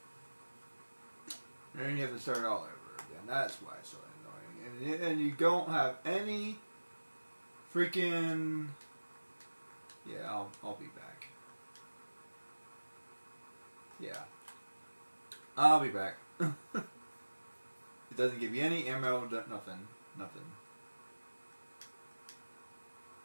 And then you have to start all over again. That's why it's so annoying. And you don't have any freaking... Yeah, I'll be back. Yeah. I'll be back. It doesn't give you any ammo, nothing. Nothing.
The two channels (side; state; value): both; inverted; correlation -1.00